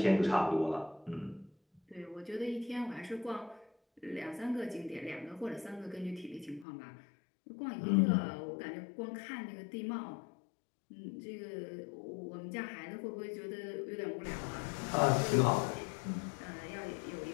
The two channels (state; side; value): drops out; right; at 6.7 s